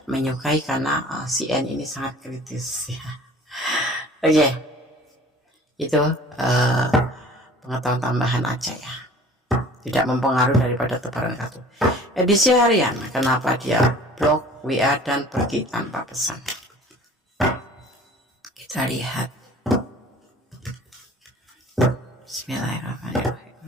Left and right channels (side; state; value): both; normal; correlation 0.47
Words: menyukai, karena si N ini sangat kritis ya. Oke. Itu pengetahuan tambahan aja ya. Tidak mempengaruhi daripada tebaran kartu. Edisi harian, kenapa dia blok WA dan pergi tanpa pesan? Kita lihat. Bismillahirrahmanirrahim.